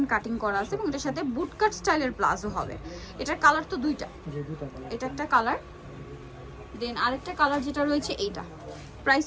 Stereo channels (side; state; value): both; identical; correlation 1.00